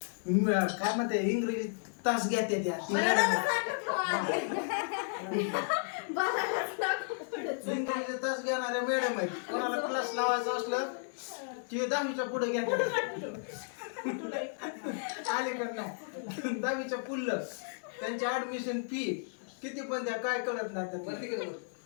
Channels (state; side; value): silent; right; digital silence